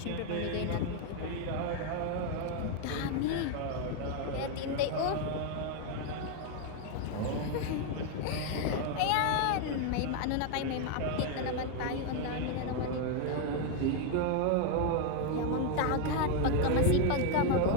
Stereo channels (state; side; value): different; both; correlation 0.01